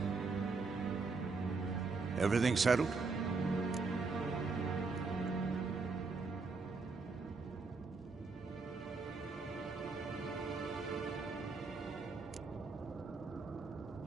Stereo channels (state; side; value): quieter; left; 4.2 dB